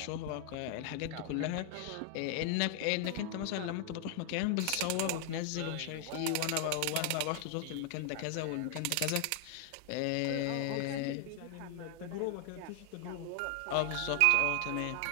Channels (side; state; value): both; different; correlation 0.00